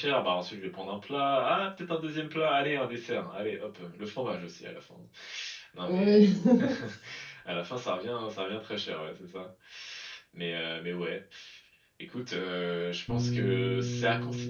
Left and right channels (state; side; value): identical; both; correlation 1.00